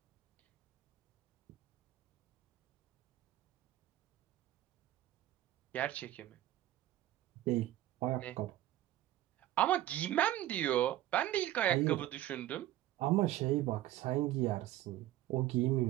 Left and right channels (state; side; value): quieter; left; 14.2 dB